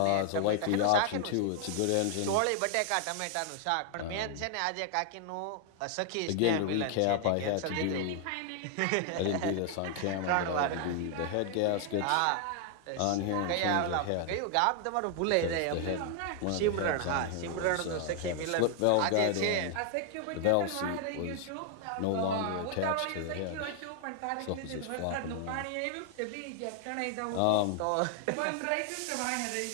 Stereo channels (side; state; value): both; different; correlation 0.00